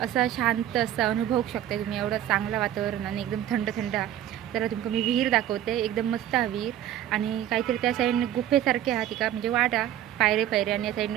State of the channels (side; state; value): left; quieter; 11.8 dB